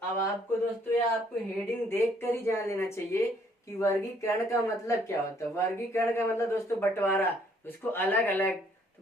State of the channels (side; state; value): both; normal; correlation 0.65